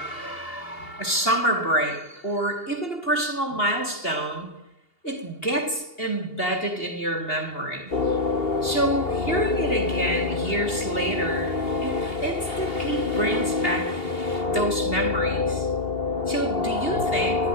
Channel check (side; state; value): right; late; 2.8 ms